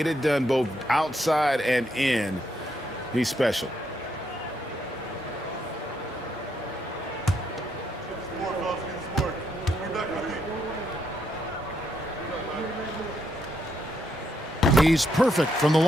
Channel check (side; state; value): both; normal; correlation 0.77